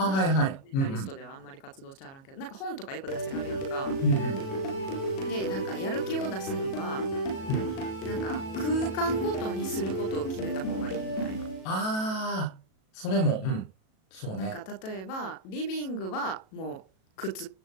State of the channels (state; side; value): late; right; 37 ms